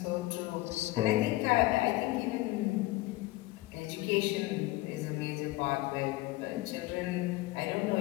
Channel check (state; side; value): quieter; right; 18.9 dB